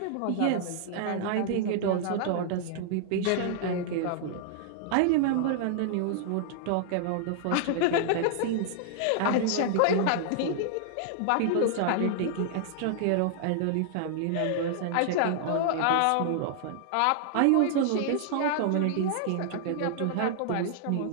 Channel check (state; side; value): different; both; correlation -0.01